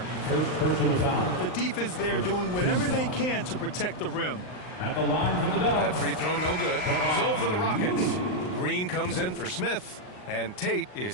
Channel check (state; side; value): late; right; 39 ms